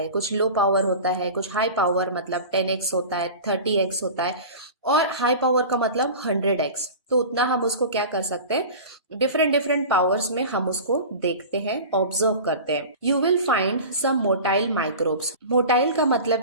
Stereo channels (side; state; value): both; inverted; correlation -0.34